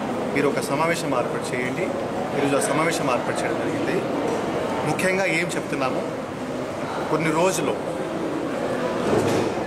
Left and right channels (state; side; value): identical; both; correlation 1.00